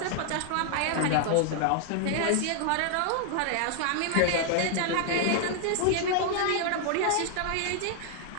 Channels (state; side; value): different; both; correlation 0.00